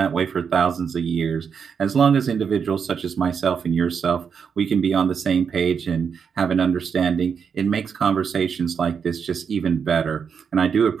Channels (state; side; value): quieter; left; 6.6 dB